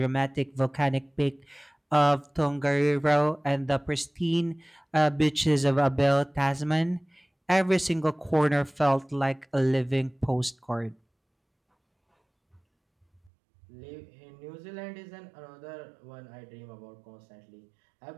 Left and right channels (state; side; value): drops out; left; at 13.3 s